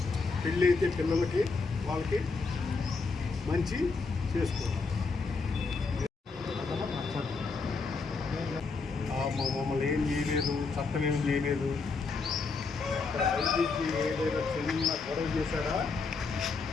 పెళ్ళి అయితే పిల్లలకి వాళ్ళకి మంచి చేసుకోవాలి. మమ్మల్ని ఏం చేయలేదు, చట్టం ఏం చేయలేదు. ఐపీసీ ఏదైనా చిన్న గొడవ చేశాడా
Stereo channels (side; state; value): right; quieter; 4.4 dB